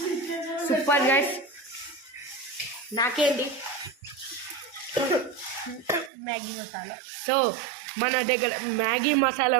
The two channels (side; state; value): left; drops out; at 6.1 s